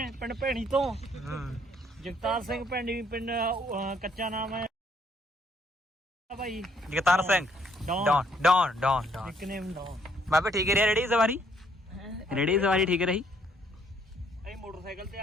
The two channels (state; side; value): normal; both; correlation 0.67